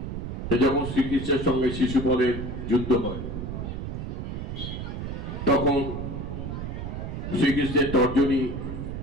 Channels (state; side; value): noise; right; rumble, 5 dB below the sound